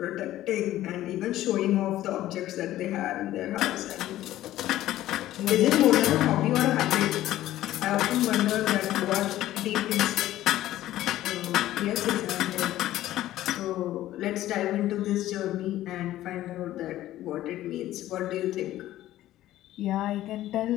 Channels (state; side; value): quieter; right; 14.2 dB